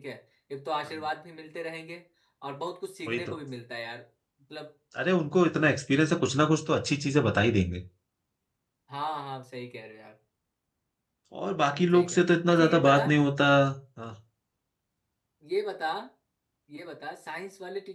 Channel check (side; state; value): both; identical; correlation 1.00